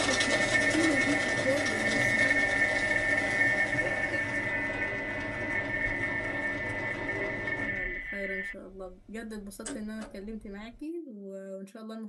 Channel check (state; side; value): identical; both; correlation 1.00